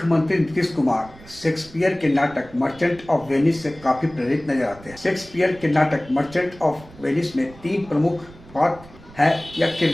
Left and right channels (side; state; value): right; noise; rumble, 21 dB below the sound